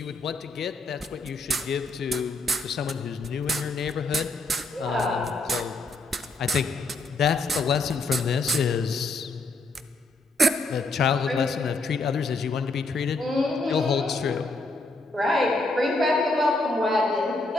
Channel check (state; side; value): quieter; right; 3.1 dB